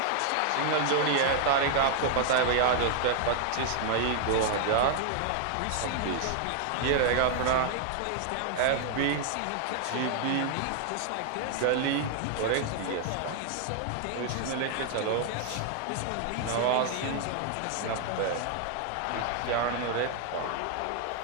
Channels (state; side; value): different; both; correlation 0.00